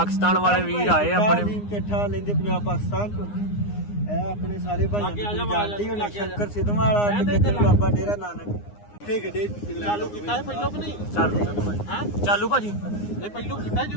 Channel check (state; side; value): late; right; 9.7 ms